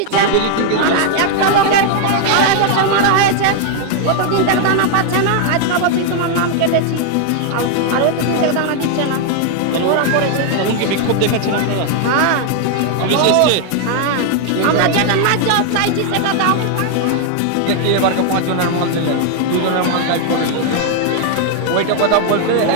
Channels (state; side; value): different; both; correlation 0.00